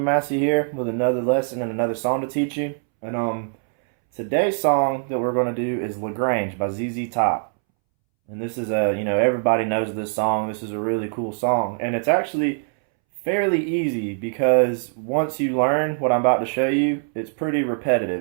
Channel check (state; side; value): silent; left; 64 dB below the other